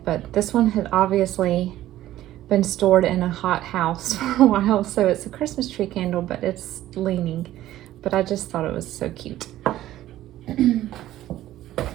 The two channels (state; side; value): quieter; left; 14.0 dB